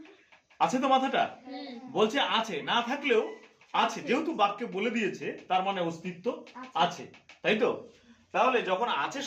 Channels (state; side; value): identical; both; correlation 1.00